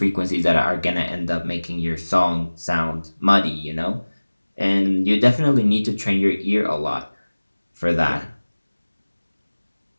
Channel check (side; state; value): both; inverted; correlation -1.00